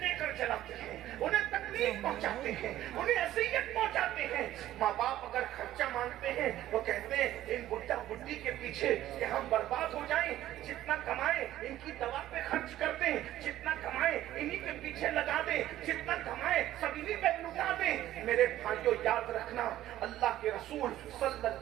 دے کر چلاتے ہیں، انہیں تکلیف پہنچاتے ہیں، انہیں اذیت پہنچاتے ہیں. ماں باپ اگر خرچہ مانگتے ہیں وہ کہتے ہیں ان بڈھا بڈھی کے پیچھے کہ ہم برباد ہو جائیں، جتنا کمائیں ان کی دوا پہ خرچ کر دیں، جتنا کمائیں انہی کے پیچھے لگا دیں، جتنا کمائیں سب انہی پہ لگا دیں. میرے بھائیوں یاد رکھنا، اللہ کے رسول صلی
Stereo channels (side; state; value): left; quieter; 13.7 dB